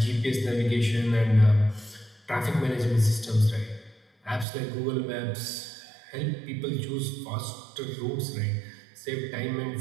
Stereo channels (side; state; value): left; drops out; at 4.5 s